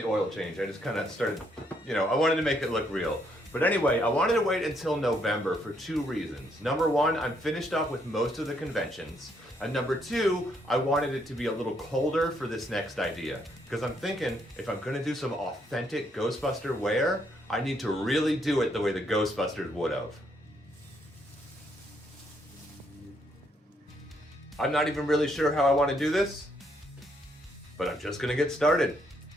oil change. I just kind of started, I wanted to make it look real. But anyway, I wanted to wait until November for 2 reasons. Number 1, I'm finished up with most of the conventions. And number 2, I wanted it to be a little colder for this next idea. Because I'm thinking, if I'm gonna do some authentic Ghostbuster wear, I need to really do it the way the Ghostbusters would have. I'm not even really sure how I want to do this, but I'm just gonna get started.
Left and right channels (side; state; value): both; normal; correlation 0.72